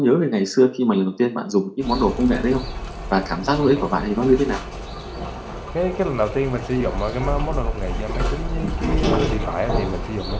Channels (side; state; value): both; identical; correlation 1.00